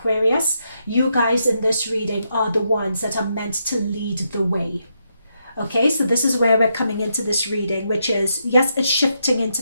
you guys in this reading are the ones that are meant to lead the way. Okay, so this is where we're coming into this reading, which is, yes, it's shifting into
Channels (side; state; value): both; inverted; correlation -0.81